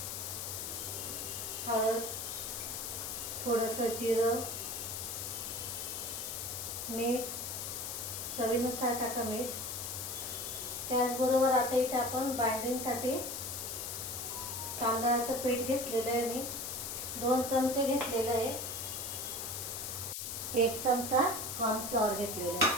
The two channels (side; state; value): left; noise; hiss, 4 dB below the sound